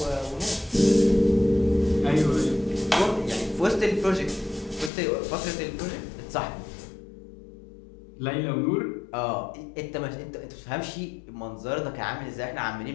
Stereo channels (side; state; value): right; drops out; at 4.9 s